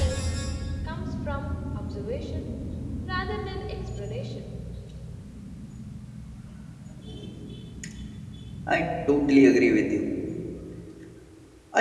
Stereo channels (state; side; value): identical; both; correlation 1.00